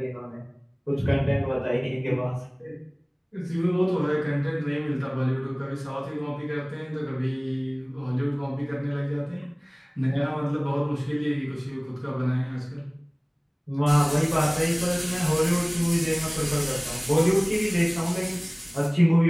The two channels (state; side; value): identical; both; correlation 1.00